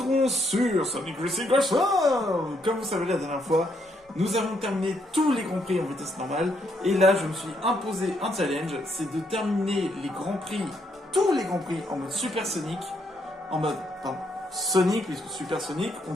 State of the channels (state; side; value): normal; both; correlation 0.75